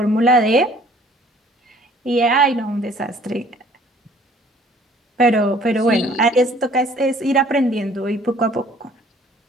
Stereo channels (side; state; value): both; normal; correlation 0.56